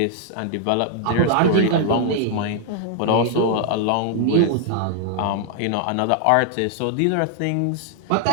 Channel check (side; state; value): both; different; correlation 0.00